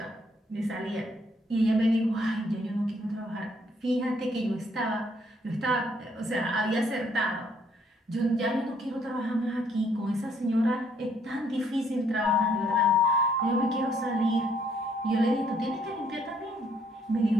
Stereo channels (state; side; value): normal; both; correlation 0.67